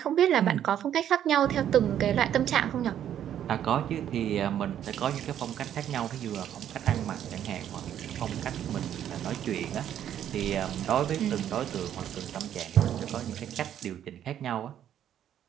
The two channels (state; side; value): quieter; left; 10.4 dB